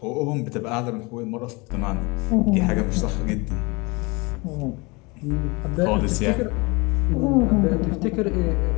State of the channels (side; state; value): right; quieter; 26.6 dB